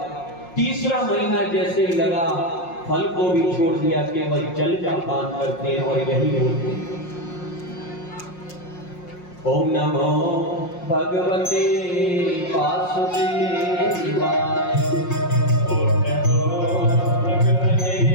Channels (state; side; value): late; right; 5.6 ms